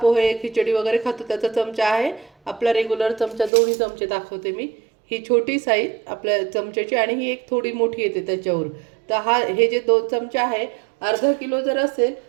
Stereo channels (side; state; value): left; drops out; at 3.5 s